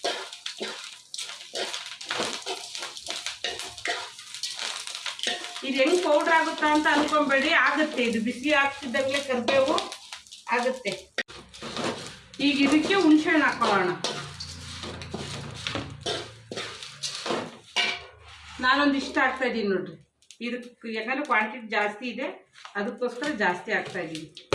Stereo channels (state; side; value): identical; both; correlation 1.00